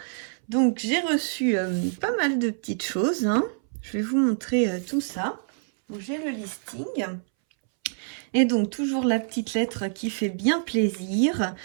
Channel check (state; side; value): silent; left; 61 dB below the other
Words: Donc j'ai reçu pas mal de petites choses, hein. Je vais vous montrer tout ça. Donc j'ai le listing et donc toujours la petite lettre qui fait bien plaisir,